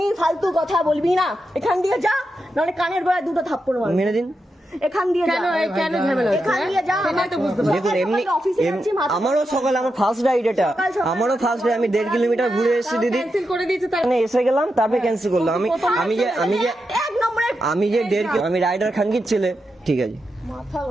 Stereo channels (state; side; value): normal; both; correlation 0.87